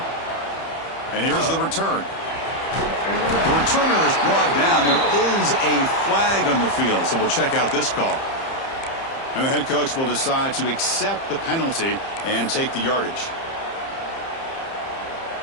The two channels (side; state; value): right; late; 30 ms